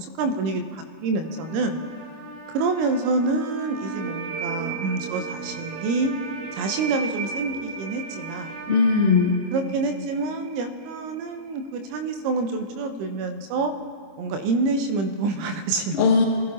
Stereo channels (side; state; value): left; late; 26 ms